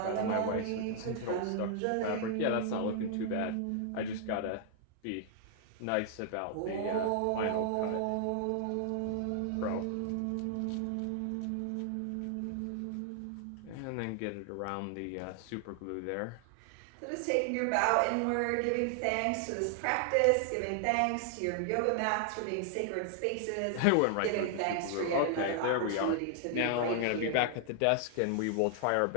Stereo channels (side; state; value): both; different; correlation 0.00